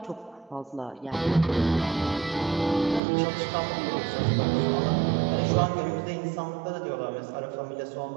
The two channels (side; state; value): left; drops out; at 3.0 s